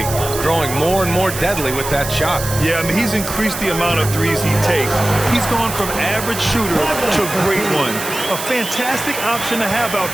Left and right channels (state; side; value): noise; right; hiss, 8 dB below the sound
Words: growing more and more deadly with that shot. Yeah, I mean, he's increased the amount of threes he takes. He's gone from average shooter to a great one. A fantastic option to have out